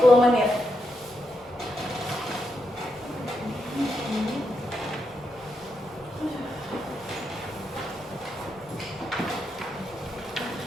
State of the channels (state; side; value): normal; both; correlation 0.83